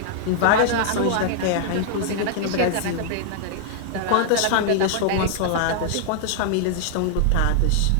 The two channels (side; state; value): both; different; correlation -0.01